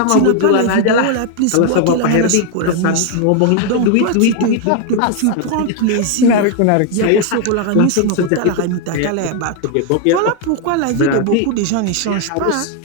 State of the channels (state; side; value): different; both; correlation 0.01